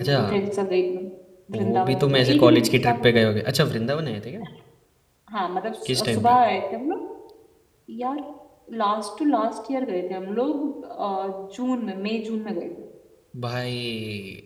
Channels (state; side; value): identical; both; correlation 1.00